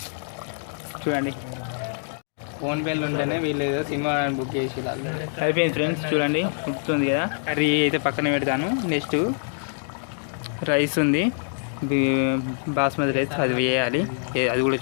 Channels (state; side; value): silent; right; 62 dB below the other